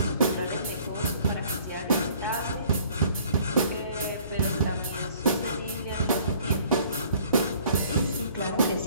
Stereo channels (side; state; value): both; inverted; correlation -0.55